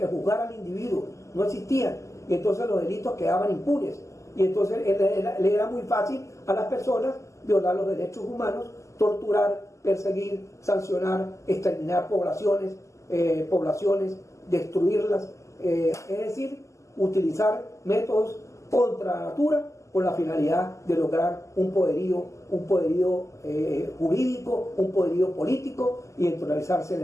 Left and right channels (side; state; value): right; late; 0.15 ms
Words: juzgara al individuo, no existían. Y entonces los delitos quedaban impunes. Y entonces le era muy fácil a las personas violar los derechos humanos, torturar, perseguir, sancionar, exterminar poblaciones, destruirlas. Es decir, utilizar métodos contra la natura con la finalidad de lograr un poderío jurídico, un poderío político y entronizarzarse en